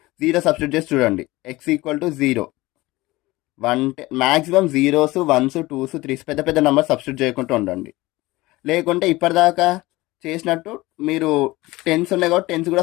0 సబ్స్టిట్యూట్ చేసి చూడండి, x equal to 0, 110 maximum 0s 1s 2s 3s పెద్ద నెంబర్ సబ్స్టిట్యూట్ చేయకుండా ఉండండి. లేకుంటే ఇప్పటిదాకా చేసినట్టు మీరు 10s ఉన్నాయి కాబట్టి 10s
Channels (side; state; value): right; quieter; 19.9 dB